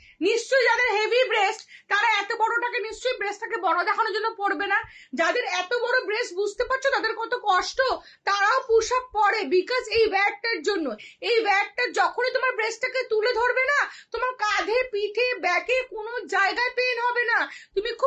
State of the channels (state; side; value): identical; both; correlation 1.00